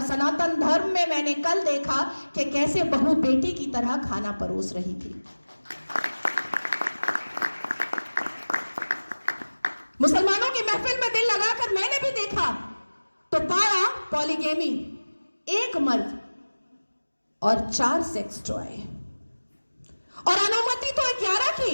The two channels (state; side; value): inverted; both; correlation -1.00